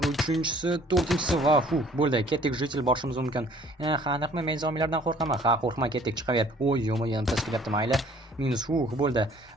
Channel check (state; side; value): normal; both; correlation 0.55